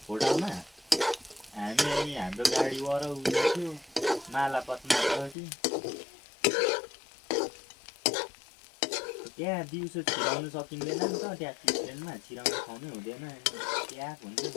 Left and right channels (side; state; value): right; drops out; at 5.4 s